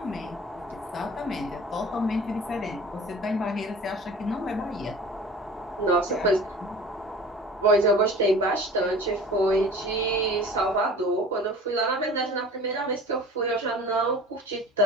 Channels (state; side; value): normal; both; correlation 0.41